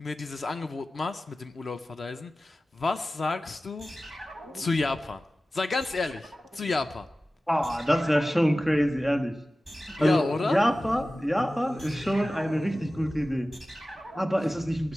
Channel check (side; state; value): both; normal; correlation 0.96